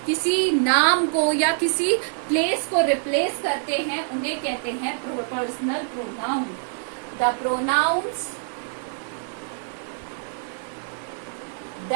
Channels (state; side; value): silent; left; digital silence